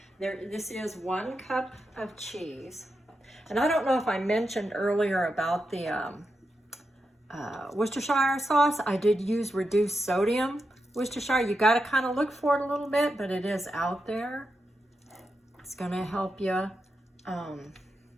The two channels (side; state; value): both; normal; correlation 0.87